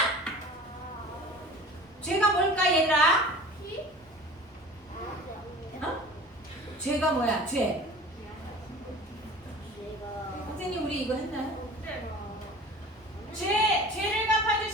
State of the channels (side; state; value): both; normal; correlation 0.41